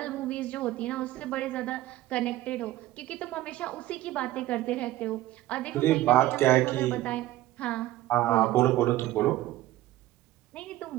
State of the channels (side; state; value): left; quieter; 15.7 dB